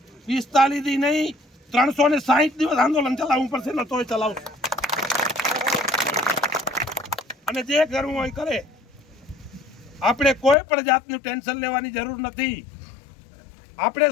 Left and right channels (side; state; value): right; drops out; at 10.6 s